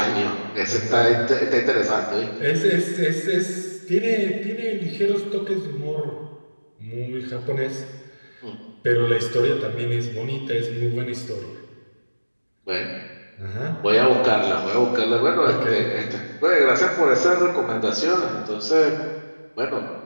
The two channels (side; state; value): both; inverted; correlation -1.00